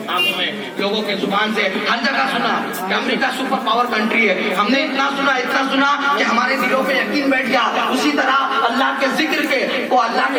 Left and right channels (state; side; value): identical; both; correlation 1.00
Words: میں, لوگوں کے زبان سے ہر جگہ سنا کہ امریکہ سپر پاور کنٹری ہے. ہم نے اتنا سنا کہ ہمارے دلوں پہ یقین بیٹھ گیا. اسی طرح اللہ کے ذکر کے وہ اللہ کی